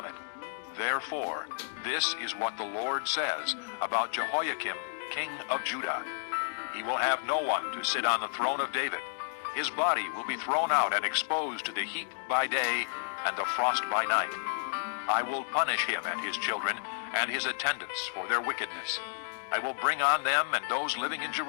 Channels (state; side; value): silent; right; digital silence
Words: it?' Therefore, this is what the Lord says about Jehoiakim, king of Judah. He will have no one to sit on the throne of David. His body will be thrown out and exposed to the heat by day and the frost by night. I will punish him and his children and his attendants for their wickedness. I will bring on them and those living in